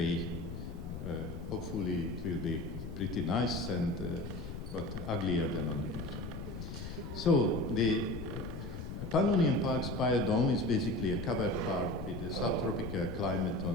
Hopefully it will be pretty nice, but uglier than on the picture. So the Pannonian Park's biodome is basically a covered park with a subtropical climate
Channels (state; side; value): noise; left; rumble, 8 dB below the sound